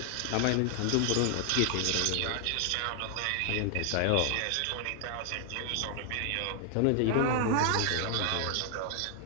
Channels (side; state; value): both; different; correlation 0.00